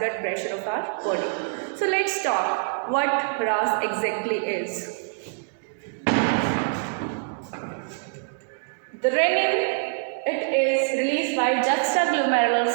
pressure of our body. So let's talk what RAAS exactly is. The renin, it is released by juxtaglomerular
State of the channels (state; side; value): silent; left; digital silence